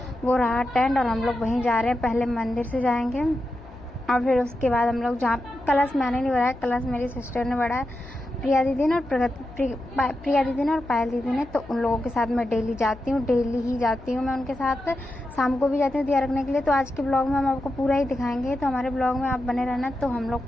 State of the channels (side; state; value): left; noise; hum, 20 dB below the sound